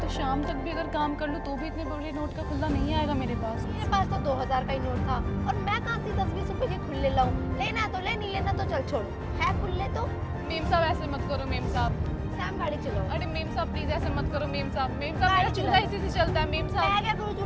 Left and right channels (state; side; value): identical; both; correlation 1.00